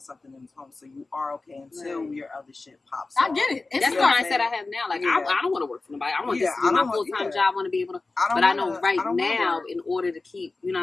in home, so you are okay until Right. your other shit pops I off. get it. It's That's You the know what fine. I'm mindset I saying? have now. Like, Yeah. I don't want to work for nobody. I want Yeah, this to be I my don't want- full-time yeah. job. I want to be able to, I but I know right don't wanna now, work. in order to keep, you know what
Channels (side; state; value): right; quieter; 3.5 dB